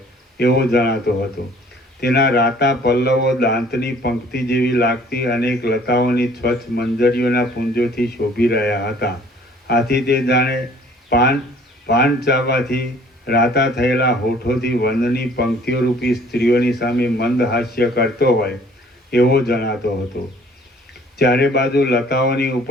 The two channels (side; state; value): both; normal; correlation 0.55